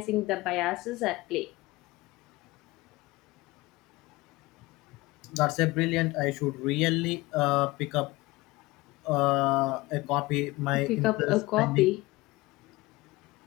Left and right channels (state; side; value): quieter; right; 20.9 dB